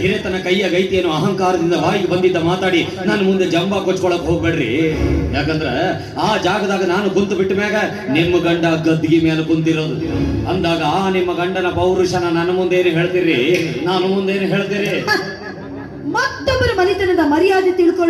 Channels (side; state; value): both; identical; correlation 1.00